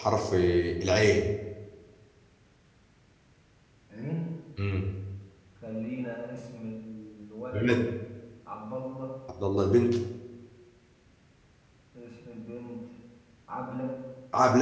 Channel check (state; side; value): identical; both; correlation 1.00